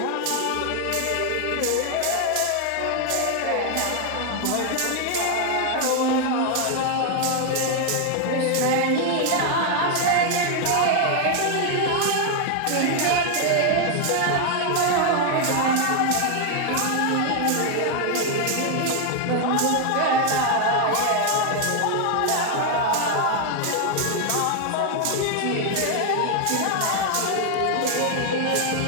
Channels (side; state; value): both; different; correlation 0.00